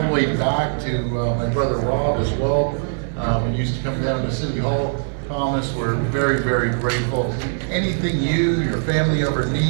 the way back to my brother Rob as well. When he used to come down to City Hall, Thomas, we're very, very grateful. Anything you, your family ever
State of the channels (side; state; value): left; silent; 55 dB below the other